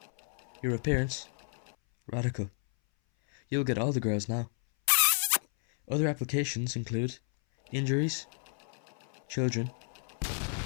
your appearance. Radical. You'll get all the girls now. Other applications include injuries, children,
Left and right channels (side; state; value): right; silent; 57 dB below the other